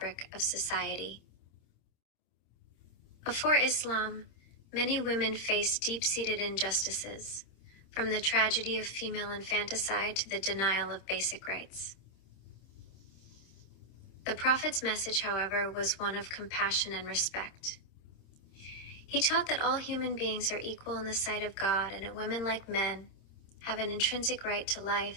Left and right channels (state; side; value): late; right; 26 ms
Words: of society. Before Islam, many women faced deep-seated injustices, from the tragedy of female infanticide to the denial of basic rights. The Prophet's message, however, was one of compassion and respect. He taught that all human beings are equal in the sight of God and that women, like men, have an intrinsic right to